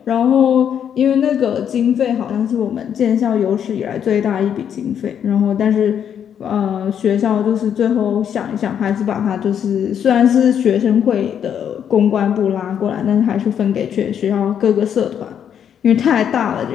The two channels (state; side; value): quieter; right; 8.7 dB